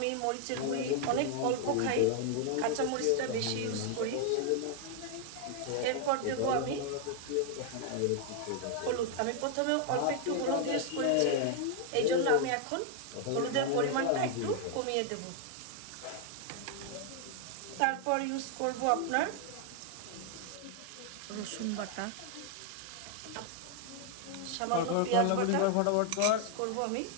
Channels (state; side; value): different; both; correlation 0.00